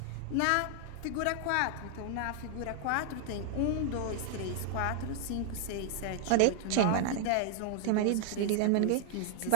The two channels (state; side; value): different; both; correlation 0.00